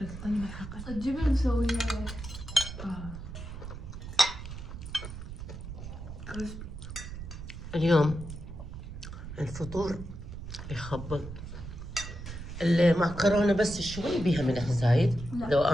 فلسطيني بالحقة. الجبن مسويها اليوم الفطور يخبط. المعكرونة بس شوي بيها ملح زايد. لو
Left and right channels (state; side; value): noise; right; rumble, 10 dB below the sound